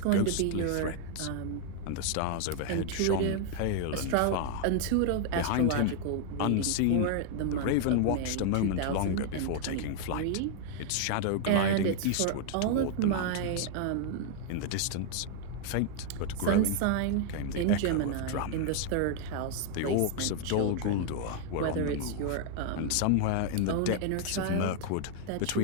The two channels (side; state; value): both; different; correlation 0.00